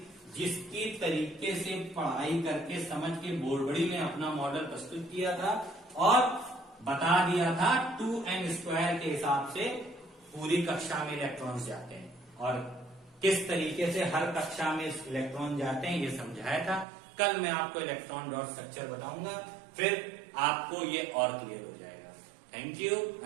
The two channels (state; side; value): drops out; left; at 16.9 s